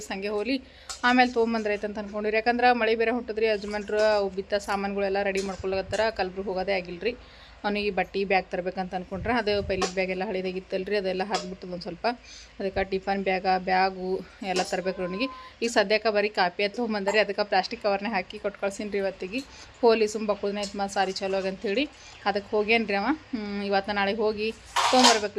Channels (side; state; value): both; identical; correlation 1.00